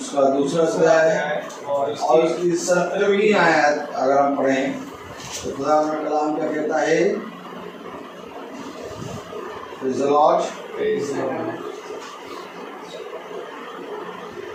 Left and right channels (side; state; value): both; identical; correlation 1.00